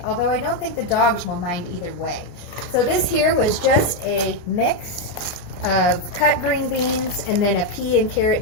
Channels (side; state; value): right; late; 28 ms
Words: Although I don't think the dogs will mind either way. So this here was just a mix of cut green beans and then a pea and carrot